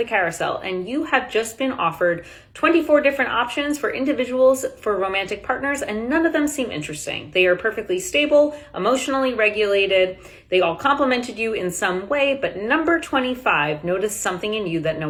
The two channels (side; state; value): both; identical; correlation 1.00